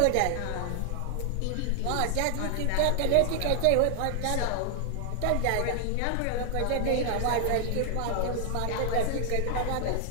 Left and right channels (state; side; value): different; both; correlation 0.00